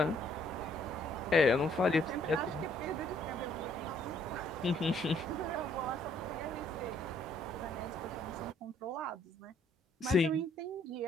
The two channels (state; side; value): normal; both; correlation 0.65